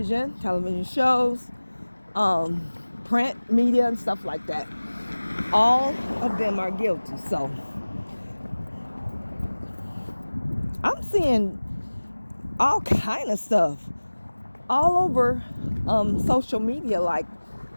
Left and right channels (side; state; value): both; inverted; correlation -1.00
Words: shows, print media and stuff like that. All of them are guilty. So I'm seeing all kind of stuff all over social media. Like,